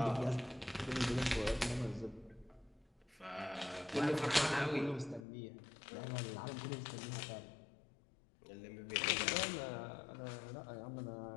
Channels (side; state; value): right; drops out; at 5.2 s